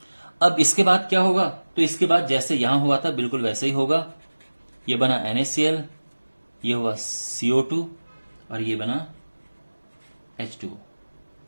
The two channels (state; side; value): inverted; both; correlation -1.00